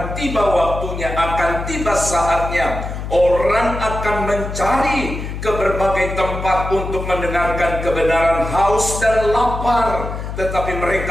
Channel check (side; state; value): left; noise; hum, 6 dB below the sound